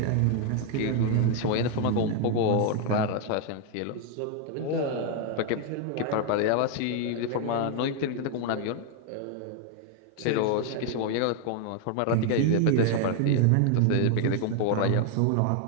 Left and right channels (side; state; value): both; different; correlation 0.01